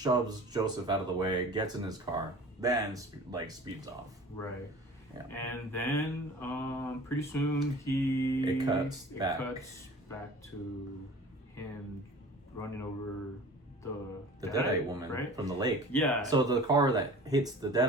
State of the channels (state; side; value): normal; both; correlation 0.42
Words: Joseph out of the way, gets in his car, then speeds off. Right. Yeah. And then pretty soon it cuts back to him running over the Deadite woman, right? From the lake. Yeah. So the car that hits the